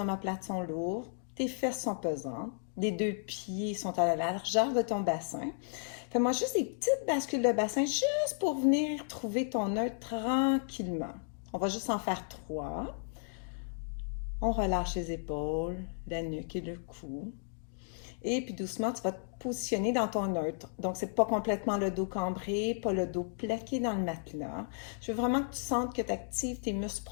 sont lourdes, tes fesses sont pesantes, les deux pieds sont à la largeur de ton bassin. Fais-moi juste des petites bascules de bassin juste pour venir trouver ton neutre tranquillement. On va juste en faire 3. On relâche les épaules, la nuque et le cou. Et puis doucement, tu vas te positionner dans ton neutre. Donc, c'est pas complètement le dos cambré, pas le dos plaqué dans le matelas. Je veux vraiment que tu sentes que tu actives tes muscles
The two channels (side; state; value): right; silent; digital silence